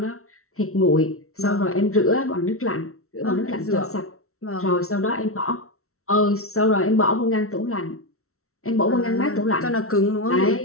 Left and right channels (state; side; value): late; right; 0.63 ms